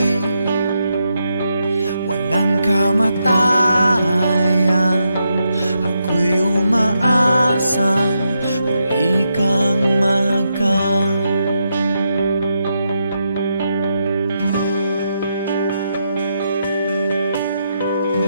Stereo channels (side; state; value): both; inverted; correlation -0.83